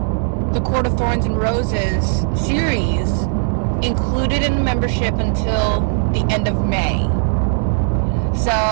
the Court of Thorns and Roses series included in the membership until the end of May. So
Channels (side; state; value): left; silent; 59 dB below the other